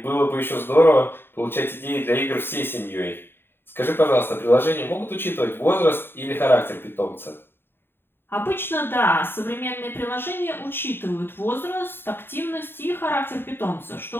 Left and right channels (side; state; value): right; late; 0.11 ms